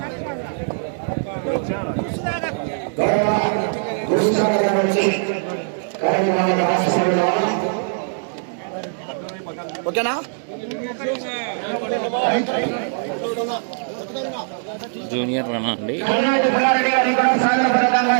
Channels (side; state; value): left; silent; digital silence